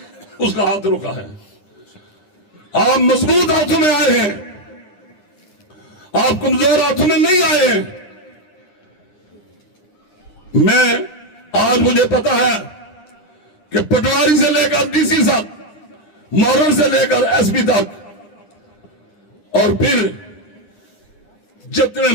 اس کا ہاتھ روکا ہے. آپ مضبوط ہاتھوں میں آئے ہیں، آپ کمزور ہاتھوں میں نہیں آئے ہیں. میں آج مجھے پتا ہے کہ پٹواری سے لے کر ڈی سی تک، مورن سے لے کر ایس پی تک، اور پھر جتنے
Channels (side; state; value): right; late; 9.9 ms